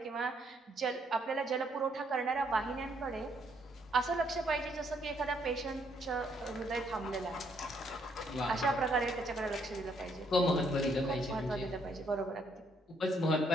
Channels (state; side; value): normal; both; correlation 0.70